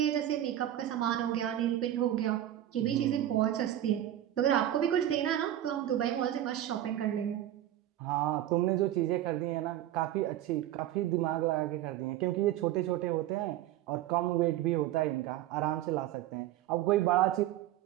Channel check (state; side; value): quieter; left; 12.7 dB